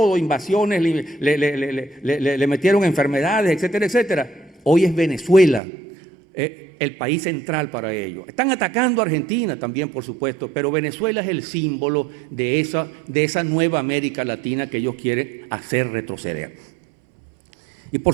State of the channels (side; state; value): left; drops out; at 5.6 s